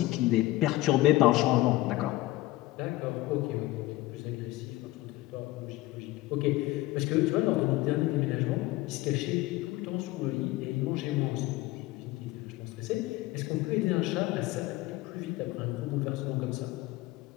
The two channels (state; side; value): quieter; right; 17.8 dB